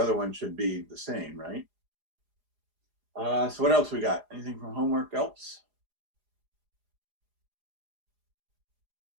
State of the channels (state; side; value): late; left; 4.9 ms